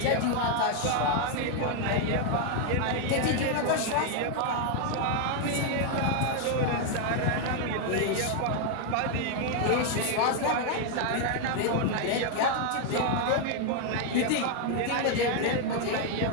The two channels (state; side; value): different; both; correlation 0.00